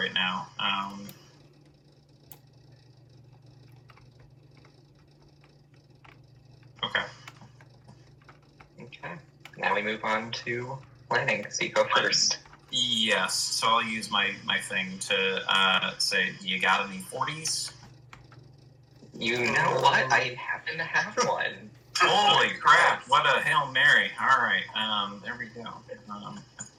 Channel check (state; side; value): identical; both; correlation 1.00